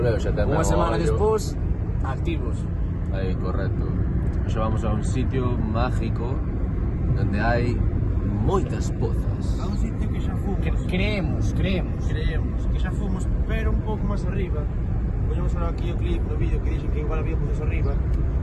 xa ten Unha semana ollo. despois, activos. Aí, correcto. Xa vamos a un sitio mágico donde hai moitas pozas. A un sitio que xa fomos. Creemos. Creemos que xa fomos, pero un pouco máis arriba. Poñemos ahora aquí o clip no vídeo que dixen que igual había pozos arriba.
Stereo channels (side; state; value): both; identical; correlation 1.00